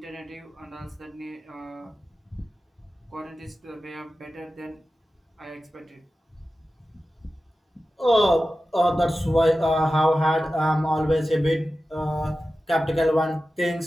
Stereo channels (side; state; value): both; normal; correlation 0.94